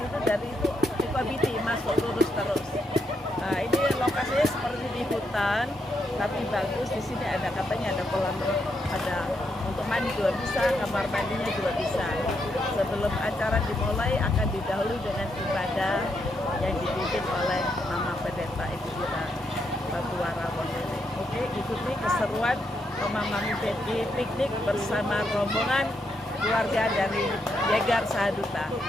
itu dari Sukabiti masuk lurus terus. Nah ini lokasinya seperti di hutan, tapi bagus. Di sini ada katanya ada kolam, ada untuk mandi juga bisa, kamar mandinya juga bisa. Sebelum acara dimulai akan didahului dengan ibadah yang dipimpin oleh Mama Pendeta Ibu kita Batuara Wondene. Oke, ikuti keseruan Mama Mami Betty piknik bersama rombongan keluarga dari Yegar Sahaduta.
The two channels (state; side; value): normal; both; correlation 0.80